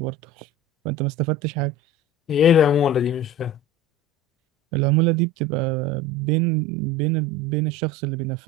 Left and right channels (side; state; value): both; normal; correlation 0.34